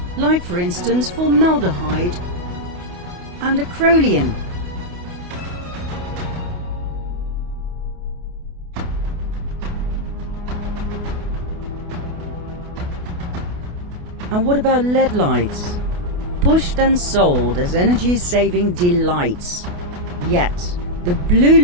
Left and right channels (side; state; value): left; late; 28 ms